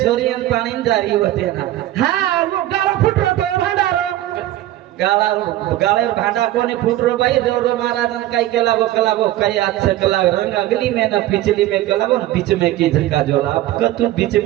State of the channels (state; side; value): quieter; left; 14.6 dB